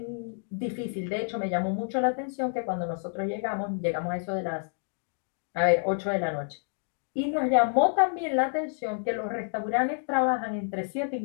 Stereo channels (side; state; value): right; silent; digital silence